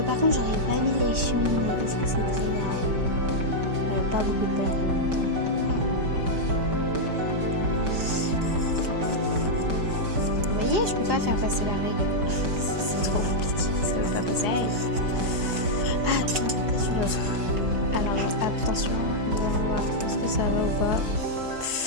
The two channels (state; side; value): late; left; 5.2 ms